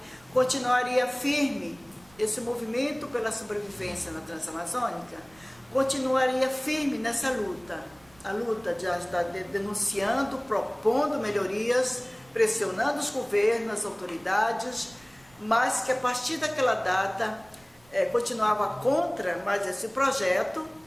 continuaria firme, esse movimento pela sobrevivência na Transamazônica continuaria firme nessa luta, a luta de estar denunciando, propondo melhorias, pressionando os governos, as autoridades, mas que a partir daquela data continuava contra mais esse projeto,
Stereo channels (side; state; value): right; noise; rumble, 28 dB below the sound